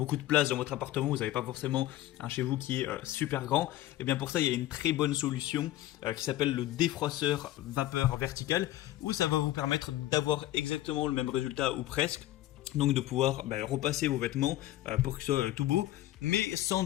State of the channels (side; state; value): right; quieter; 14.9 dB